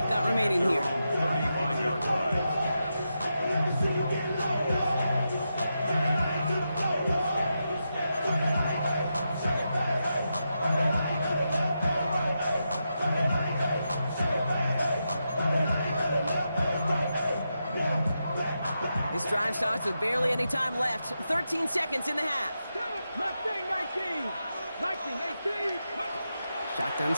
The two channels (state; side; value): inverted; both; correlation -0.87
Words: got remaining here. 35-yard drive. This drive starts with barely any time left. 13 seconds in the half. Mustang 19, 18. Shotgun